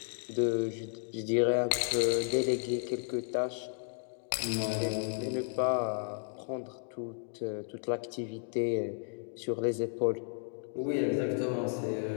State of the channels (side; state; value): right; silent; 56 dB below the other